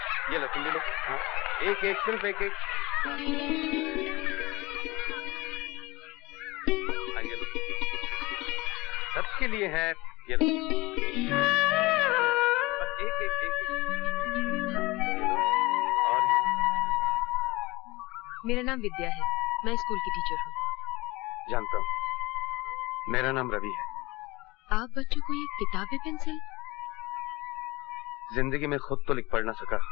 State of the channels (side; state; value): right; quieter; 21.8 dB